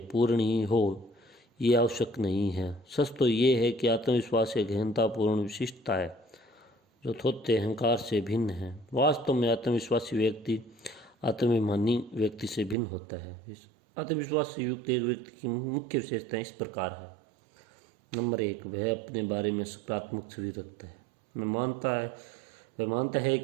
पूर्ण ही हो ये आवश्यक नहीं है। सच तो ये है कि आत्मविश्वास एक गहनतापूर्ण विशिष्टता है जो थोथे अहंकार से भिन्न है। वास्तव में आत्मविश्वासी व्यक्ति आत्माभिमानी व्यक्ति से भिन्न होता है। आत्मविश्वास से युक्त एक व्यक्ति की मुख्य विशेषताएं इस प्रकार है। नंबर 1, वह अपने बारे में सकारात्मक छवि रखता है। वह मानता है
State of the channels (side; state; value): left; drops out; at 12.8 s